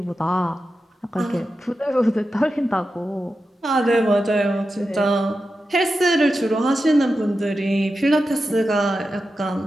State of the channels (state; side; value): normal; both; correlation 0.91